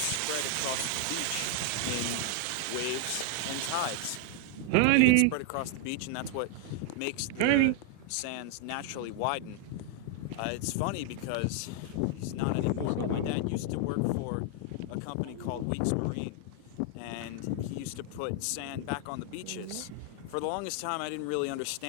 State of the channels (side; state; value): both; different; correlation 0.00